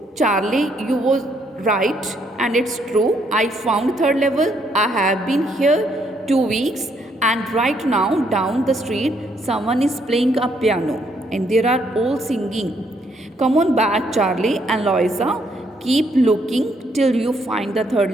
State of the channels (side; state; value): both; normal; correlation 0.71